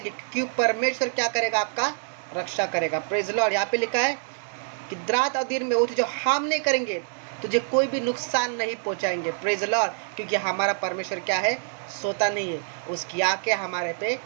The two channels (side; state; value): left; silent; digital silence